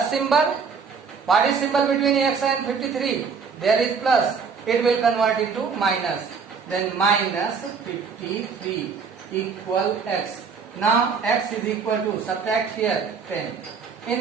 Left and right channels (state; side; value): quieter; left; 5.7 dB